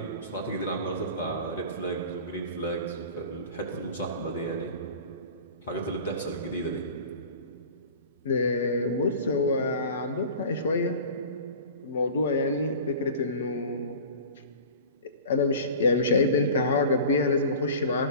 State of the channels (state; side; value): inverted; both; correlation -0.39